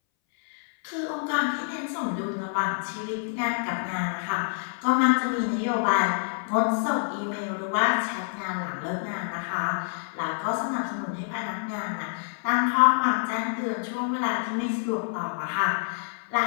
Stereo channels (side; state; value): right; silent; 60 dB below the other